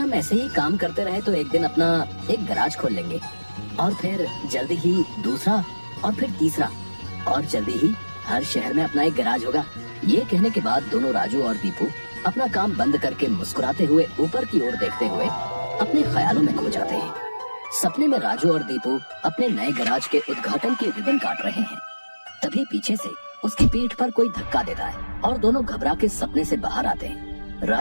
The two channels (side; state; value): both; inverted; correlation -1.00